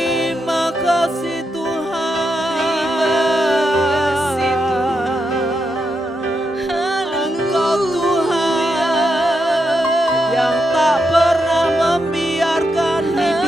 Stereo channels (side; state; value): both; normal; correlation 0.84